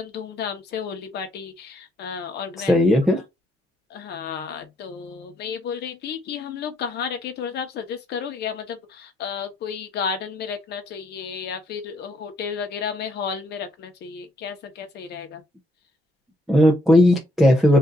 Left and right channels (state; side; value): normal; both; correlation 0.71